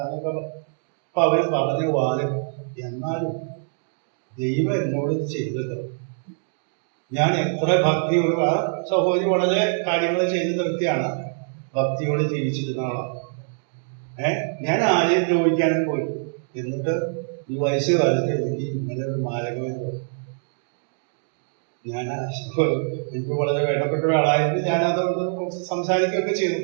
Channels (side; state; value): left; silent; 63 dB below the other